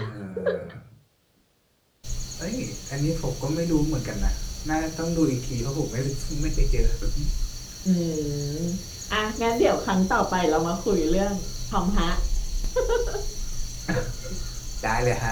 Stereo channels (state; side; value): identical; both; correlation 1.00